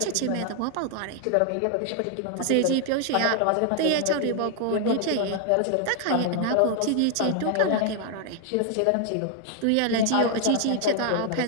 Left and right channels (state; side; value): different; both; correlation 0.00